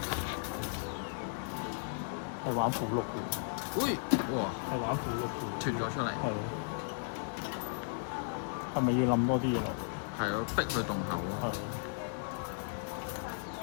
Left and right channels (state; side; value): silent; right; digital silence